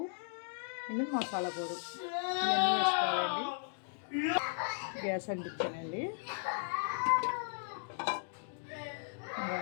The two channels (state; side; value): silent; right; digital silence